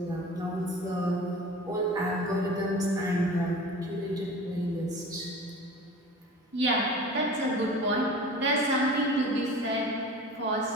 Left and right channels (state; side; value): normal; both; correlation 0.38